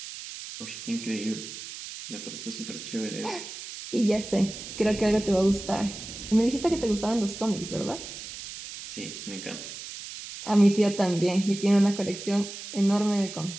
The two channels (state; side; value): noise; right; hiss, 11 dB below the sound